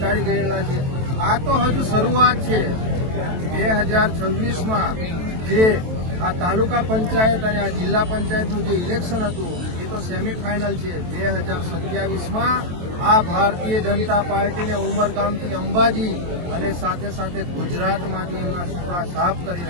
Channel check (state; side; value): late; left; 23 ms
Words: ગયેલા છે। આ તો હજુ શરૂઆત છે। 2026માં જે આ તાલુકા પંચાયત અને આ જિલ્લા પંચાયતનું જે ઇલેક્શન હતું એ તો સેમીફાઇનલ છે। 2027માં આ ભારતીય જનતા પાર્ટીને ઉમરગામથી અંબાજી અને સાથે સાથે ગુજરાતમાંથી એમના સુપડા સાફ કરી